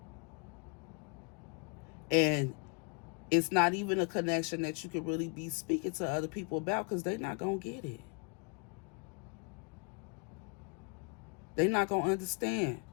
And it's not even a connection that you can really be speaking to other people about because they're not going to get it. They're not going to understand.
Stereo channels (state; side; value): quieter; right; 36.5 dB